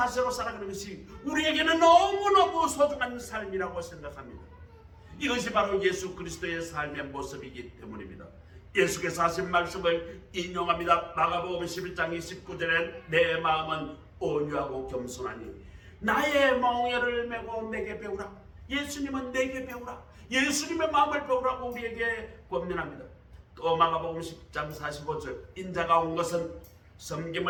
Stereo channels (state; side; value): identical; both; correlation 1.00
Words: 살아가는 것이 우리에게는 너무너무 소중한 삶이라고 생각합니다. 이것이 바로 예수 그리스도의 삶의 모습이기 때문입니다. 예수께서 하신 말씀을 인용합니다. 마가복음 11장 29절에 내 마음은 온유하고 겸손하니 나의 멍에를 메고 내게 배우라. 예수님은 내게 배우라. 예수님의 마음을 배우라고 우리에게 권면합니다. 또 마가복음 10장 45절 인자가 온 것은